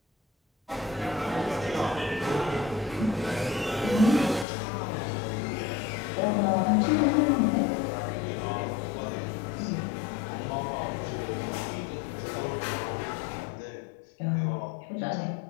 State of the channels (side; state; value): right; drops out; at 4.5 s